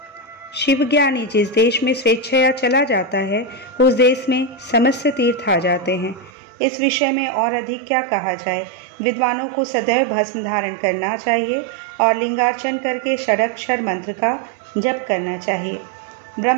शिवज्ञानी जिस देश में स्वेच्छया चला जाता है, उस देश में समस्त तीर्थ आ जाते हैं। इस विषय में और अधिक क्या कहा जाए। विद्वानों को सदैव भस्म धारण करना चाहिए और लिंगार्चन करके षडाक्षर मंत्र का जप करना चाहिए।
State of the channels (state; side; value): drops out; left; at 6.3 s